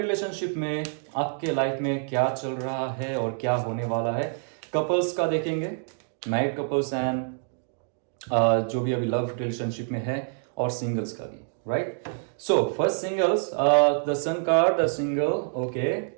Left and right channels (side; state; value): left; silent; 58 dB below the other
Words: में आपके लाइफ में क्या चल रहा है और क्या होने वाला है। कपल्स का देखेंगे, मैरिड कपल्स एंड जो भी अभी लव रिलेशनशिप में है, और सिंगल्स का भी, right. So first singles, the sun card, the single. Okay,